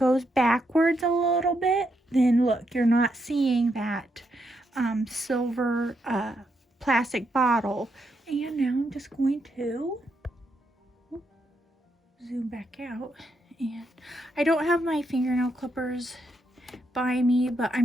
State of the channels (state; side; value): normal; both; correlation 0.80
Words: backwards a little bit, then look, you're not seeing that silver plastic bottle. And now I'm just going to zoom back out, and I don't have my fingernail clippers by me, but